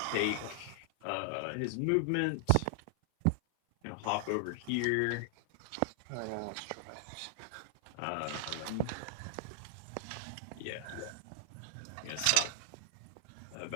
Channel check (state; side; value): different; both; correlation 0.00